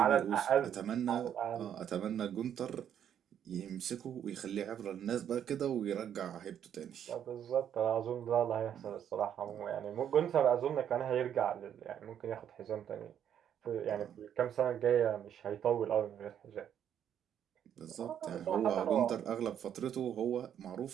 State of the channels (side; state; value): left; quieter; 9.4 dB